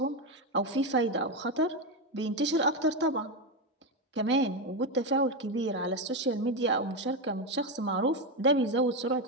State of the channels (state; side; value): normal; both; correlation 0.10